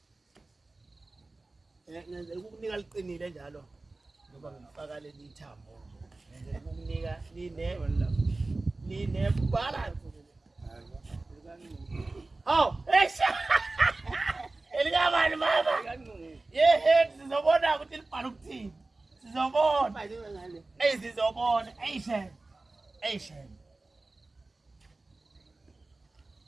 Ngenzela ukukunika liqinile njalo. Ngoba ngifaka leli thambo. Ngenzela ukukunika line balance. Oh, esha. Elikabani mama? Yehe sizobona ukuthi libhala ukuthini. Sizobona. Sizobona. Ayishen.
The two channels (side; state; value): left; quieter; 3.2 dB